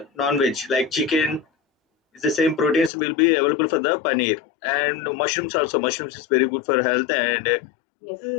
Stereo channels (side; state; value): right; drops out; at 2.9 s